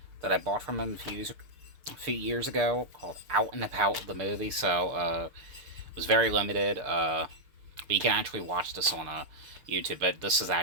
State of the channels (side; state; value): left; late; 6.8 ms